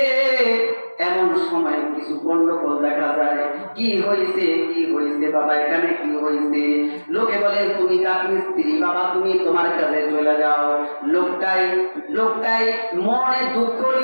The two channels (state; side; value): inverted; both; correlation -1.00